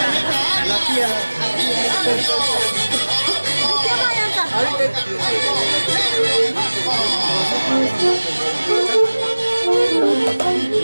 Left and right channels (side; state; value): both; inverted; correlation -1.00